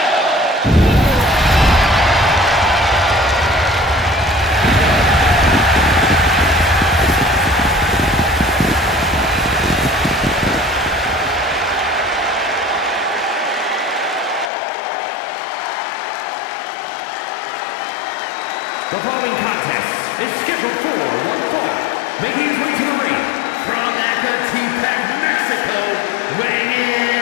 The following contest is scheduled for one fall. Making his way to the ring from Ecatepec, Mexico, weighing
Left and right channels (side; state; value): right; drops out; at 14.5 s